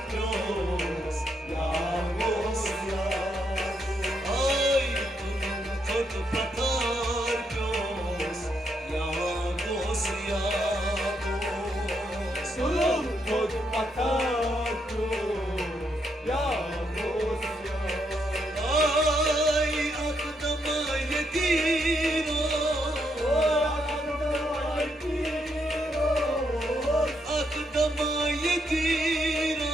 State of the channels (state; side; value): normal; both; correlation 0.77